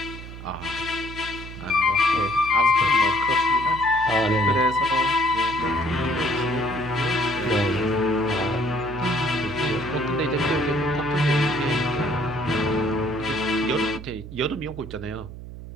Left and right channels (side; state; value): right; noise; hum, 12 dB below the sound